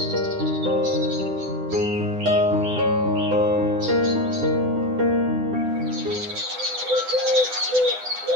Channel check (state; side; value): late; left; 9.9 ms